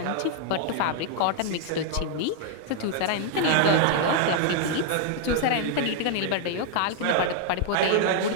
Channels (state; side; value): different; both; correlation 0.00